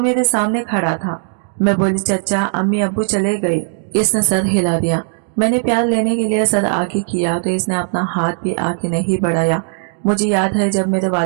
सामने खड़ा था। मैं बोली, चचा अम्मी अब्बू चले गए। इसने सर हिला दिया। मैंने प्यार लेने के लिए सर आगे किया तो इसने अपना हाथ भी आगे नहीं बढ़ाया। मुझे याद है जब मेरे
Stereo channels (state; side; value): silent; left; digital silence